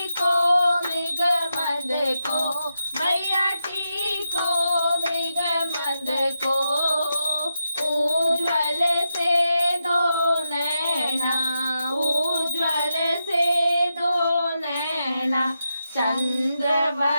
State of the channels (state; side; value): inverted; both; correlation -0.86